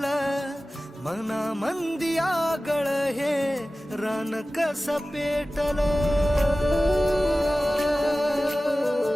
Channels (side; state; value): both; normal; correlation 0.96